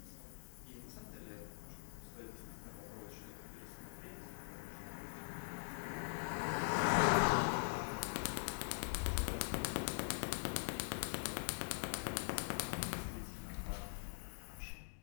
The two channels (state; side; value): silent; right; digital silence